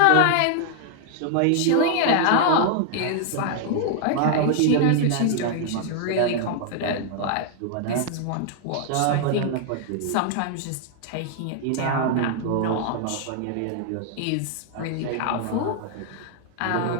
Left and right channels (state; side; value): different; both; correlation 0.00